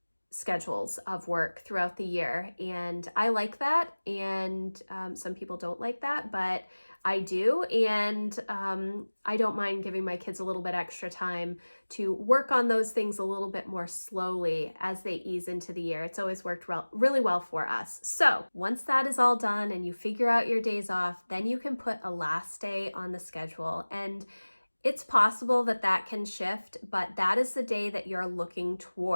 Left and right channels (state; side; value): inverted; both; correlation -1.00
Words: schedules of work throughout the year, and I like that, and some people don't like that, but I do, and I don't mind giving my kids a little bit extra time to work on those things a little bit more slowly as they ease into the year. It's always worked really well for us. So once that is all done and you figure out your days off, then you can put a last day on the schedule, and it's possible that that can shift, but that is the day that you're looking